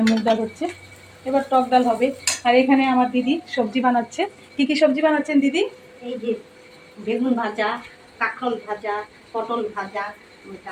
মুগ ডাল হচ্ছে, এবার টক ডাল হবে। আর এখানে আমার দিদি সবজি বানাচ্ছে। কি কি সবজি বানাচ্ছেন দিদি? এই যে বেগুন ভাজা, কাঁকরোল ভাজা, পটল ভাজা,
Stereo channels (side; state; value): both; identical; correlation 1.00